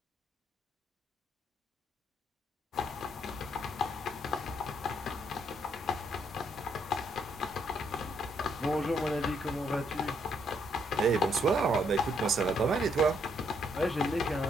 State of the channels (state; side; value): normal; both; correlation 0.72